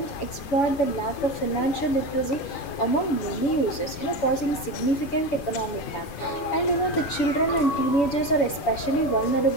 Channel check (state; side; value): late; right; 7.0 ms